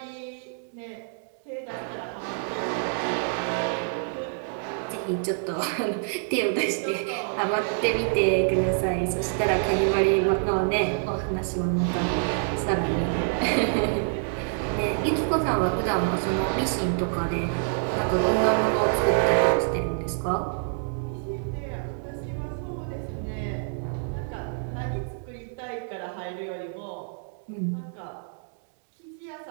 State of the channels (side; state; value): left; silent; digital silence